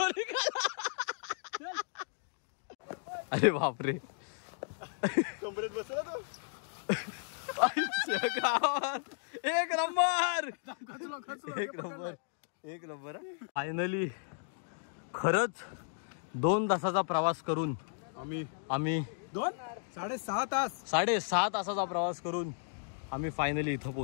निघाला. अरे बापरे, कमरेत बसला तो. एक नंबर, एक नंबर, एक नंबर. फायनली खरंच 2 तासाचा प्रवास करून आम्ही 6.5 तासाचा प्रवास करून आम्ही फायनली इथं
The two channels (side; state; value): right; silent; digital silence